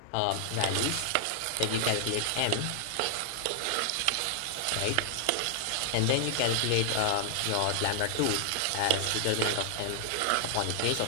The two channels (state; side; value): different; both; correlation 0.00